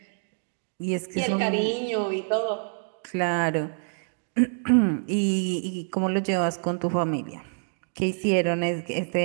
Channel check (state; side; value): silent; left; digital silence